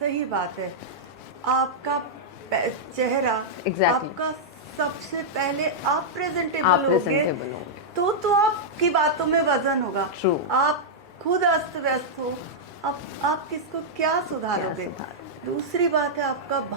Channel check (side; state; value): both; normal; correlation -0.07